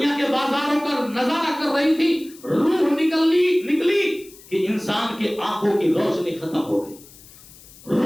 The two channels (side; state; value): left; noise; hiss, 22 dB below the sound